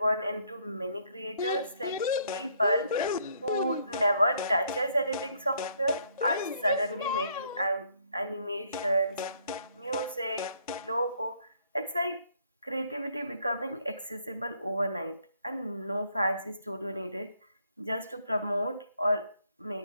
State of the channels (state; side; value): inverted; both; correlation -0.67